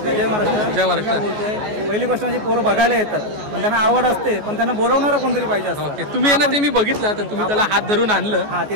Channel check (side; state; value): left; late; 14 ms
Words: जय महाराष्ट्र. जय महाराष्ट्र. पहिली गोष्ट म्हणजे पोरं बघायला येतात, पण त्यांना आवड असते, पण त्यांना बोलवणारं कोणतरी पाहिजे असतं. ओके, तुम्ही आहे ना ते मी बघितलं, तर तुम्ही त्याला हात धरून आणलं. हा, ते